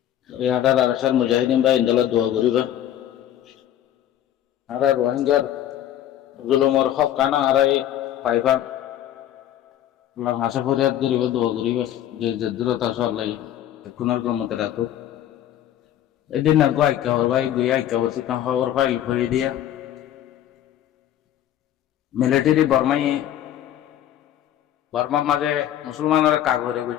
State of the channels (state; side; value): quieter; right; 11.5 dB